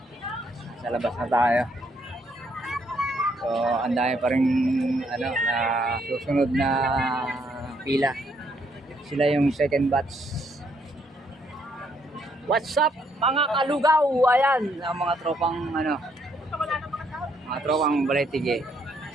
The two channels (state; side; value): normal; both; correlation 0.71